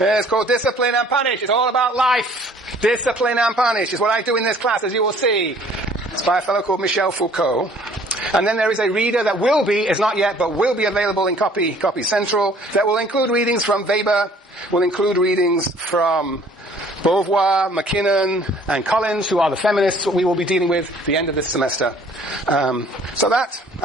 is called Discipline and Punish. It's all about life. Discipline and Punish is what I do in this class, as you will see. It's by a fellow called Michel Foucault. And then there is a reader that will be, is not yet, but will be available in Copy Central, that will include readings from Weber, will include readings from Beauvoir, McKinnon, and Collins, who are the feminists that we will be dealing with at the end of this semester. So that,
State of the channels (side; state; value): both; normal; correlation 0.56